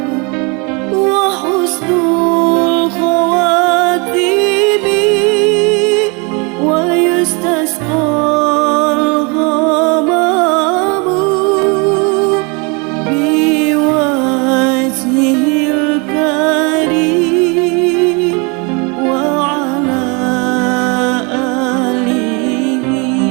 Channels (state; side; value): quieter; left; 31.0 dB